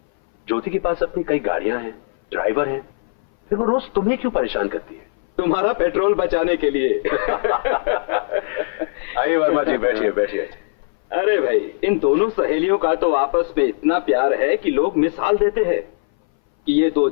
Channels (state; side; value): silent; right; 61 dB below the other